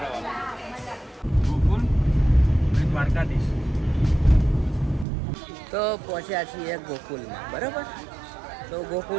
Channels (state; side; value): drops out; left; at 5.1 s